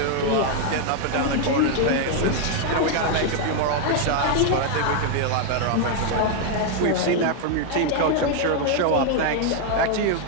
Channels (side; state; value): both; different; correlation 0.00